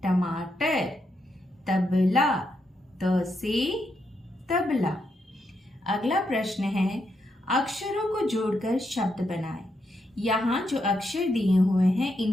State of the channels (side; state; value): both; normal; correlation 0.81